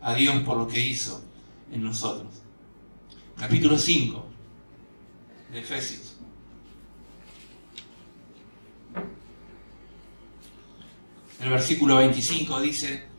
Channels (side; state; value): both; inverted; correlation -1.00